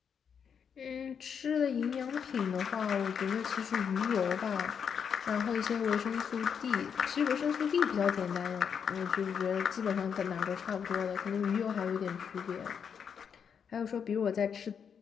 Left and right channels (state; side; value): quieter; right; 7.1 dB